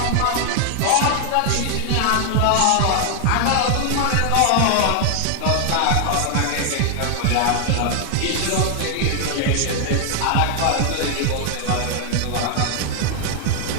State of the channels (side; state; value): both; different; correlation 0.00